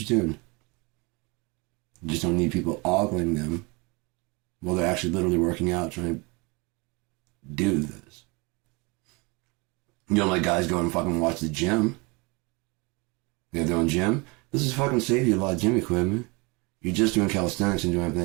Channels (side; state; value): left; quieter; 27.9 dB